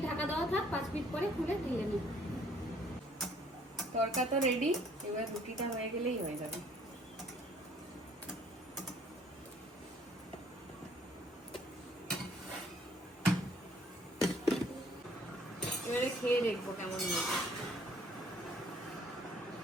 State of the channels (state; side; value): normal; both; correlation 0.60